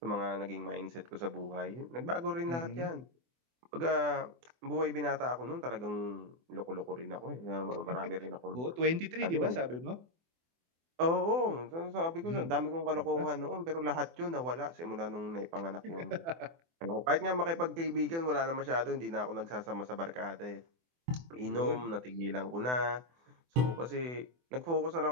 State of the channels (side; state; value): left; late; 24 ms